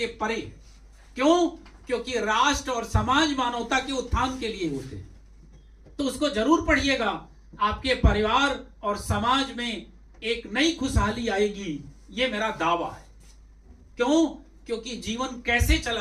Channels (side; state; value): both; identical; correlation 1.00